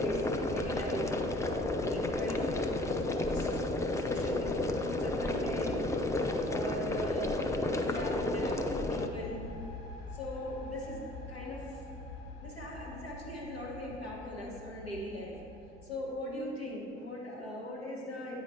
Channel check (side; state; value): both; normal; correlation 0.53